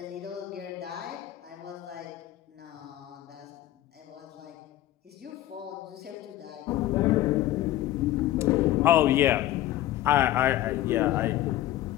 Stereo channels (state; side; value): quieter; right; 14.2 dB